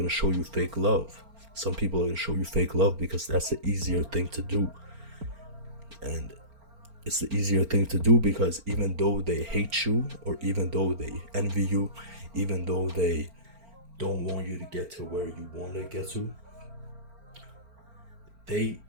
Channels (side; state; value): left; late; 4.4 ms